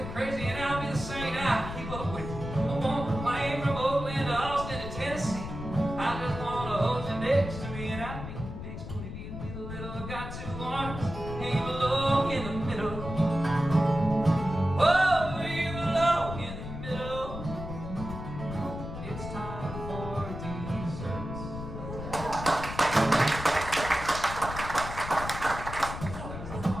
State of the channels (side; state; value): left; noise; rumble, 8 dB below the sound